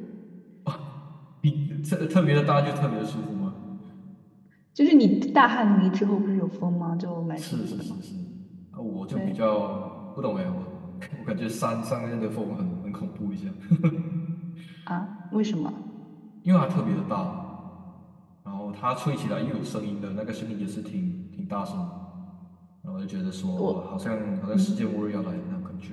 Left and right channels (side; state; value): both; identical; correlation 1.00